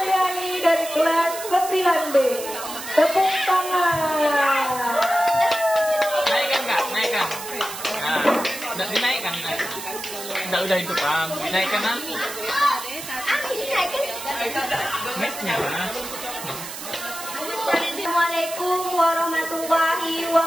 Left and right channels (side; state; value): right; noise; hiss, 10 dB below the sound